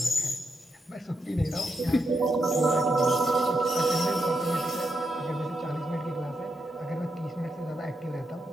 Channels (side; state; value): both; normal; correlation 0.83